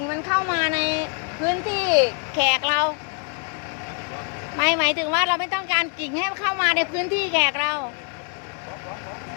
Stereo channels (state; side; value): quieter; right; 38.1 dB